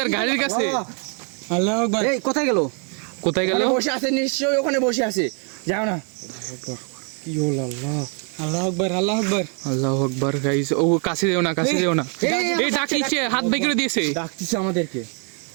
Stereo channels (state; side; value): quieter; left; 39.9 dB